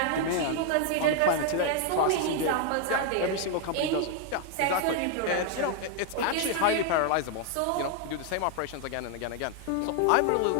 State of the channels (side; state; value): both; different; correlation 0.00